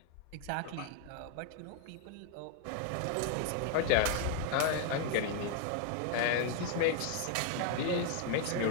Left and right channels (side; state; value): both; different; correlation 0.00